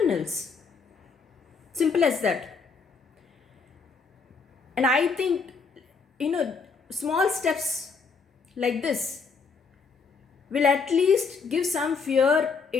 Simple as that. And I think, small steps like this will at least give some fear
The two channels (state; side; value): quieter; right; 5.0 dB